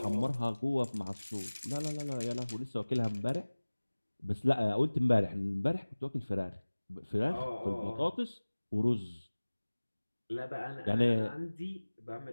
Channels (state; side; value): inverted; both; correlation -1.00